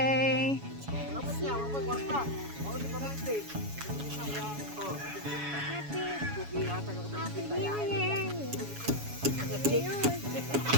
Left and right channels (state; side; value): late; left; 7.1 ms